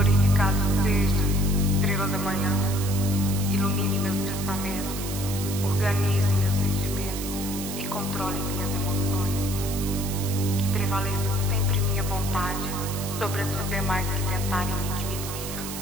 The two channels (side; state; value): right; noise; hiss, 8 dB below the sound